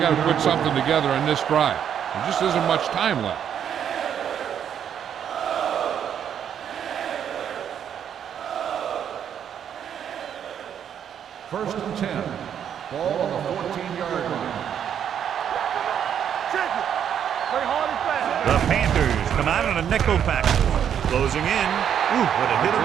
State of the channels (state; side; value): quieter; left; 8.9 dB